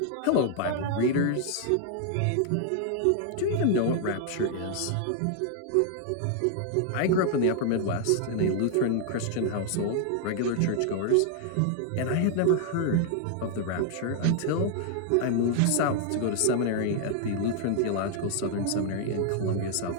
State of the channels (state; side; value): different; both; correlation 0.00